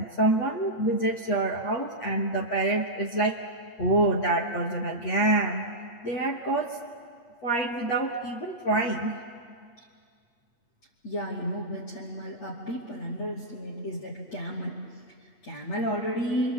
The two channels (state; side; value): late; right; 8.5 ms